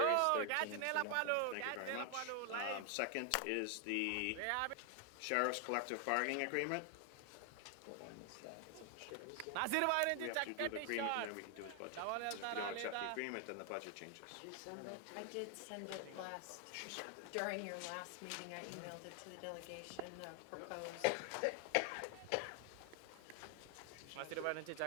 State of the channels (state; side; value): different; both; correlation 0.00